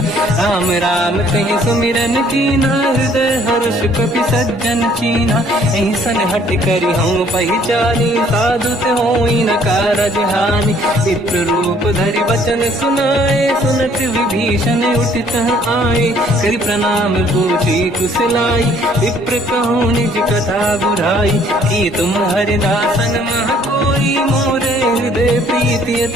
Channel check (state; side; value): normal; both; correlation 0.60